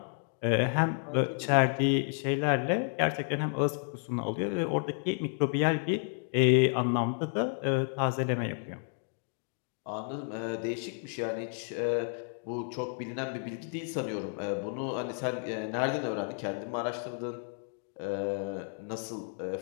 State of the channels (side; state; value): right; silent; 57 dB below the other